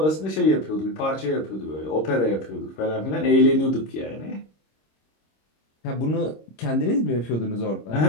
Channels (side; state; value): right; late; 26 ms